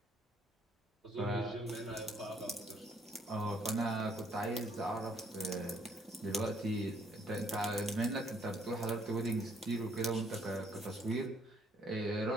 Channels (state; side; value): normal; both; correlation 0.67